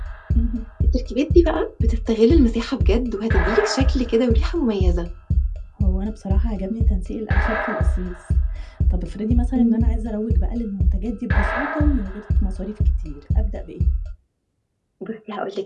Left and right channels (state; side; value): identical; both; correlation 1.00